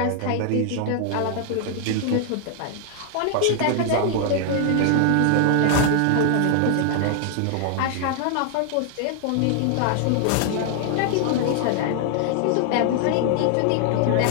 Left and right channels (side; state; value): both; different; correlation 0.00